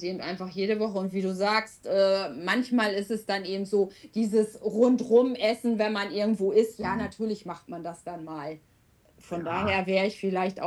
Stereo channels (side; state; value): both; identical; correlation 1.00